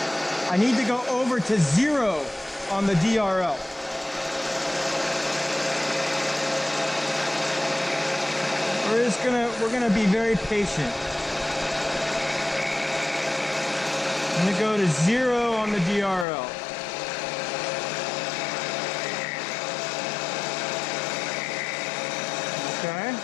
I need to go over to 0 on the DRL. We're gonna be very patient. I'm gonna go to 0 on the DRL. Okay.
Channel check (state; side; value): drops out; right; at 16.2 s